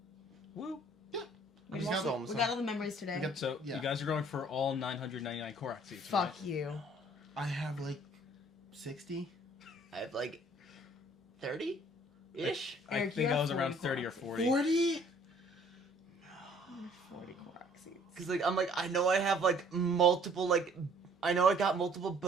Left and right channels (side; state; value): both; normal; correlation 0.57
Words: Woo. We You got, got- we got all the memories today. got- So Yeah. you guys are going for all 999 Korok seats. Fuck right? you. I have like 60. I have like 30-ish. I Eric, think you I have was around 40 30 or Korok 40. 40? 40 Korok seeds. Cause like I'm like I know I have like multiple like I know I got multiple